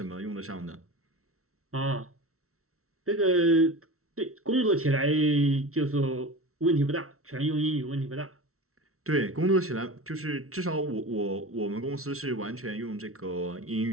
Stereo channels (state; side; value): late; left; 0.63 ms